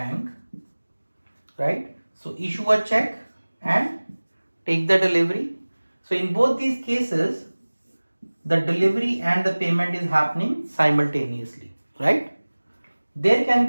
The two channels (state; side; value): inverted; both; correlation -1.00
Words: right? So issue a check and take the delivery. So in both these cases, the delivery and the payment is happening simultaneously, right? There can